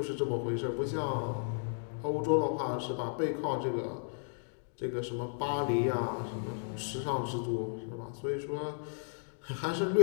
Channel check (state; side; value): silent; right; digital silence